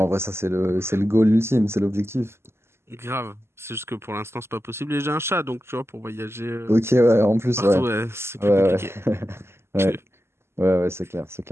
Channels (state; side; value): late; left; 0.12 ms